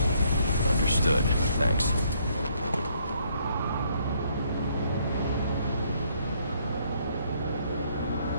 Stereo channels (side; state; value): both; inverted; correlation -0.68